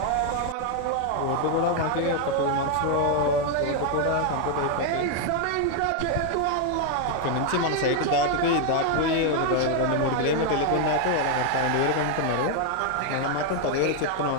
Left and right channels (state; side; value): different; both; correlation 0.00